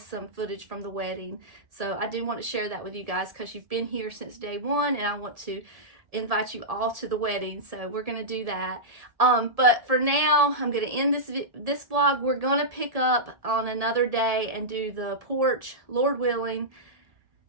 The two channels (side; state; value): left; late; 1.7 ms